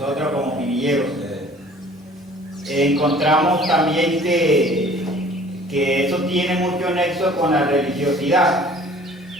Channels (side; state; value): both; normal; correlation 0.51